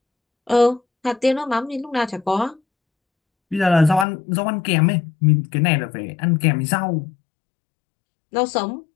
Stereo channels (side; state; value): right; drops out; at 4.0 s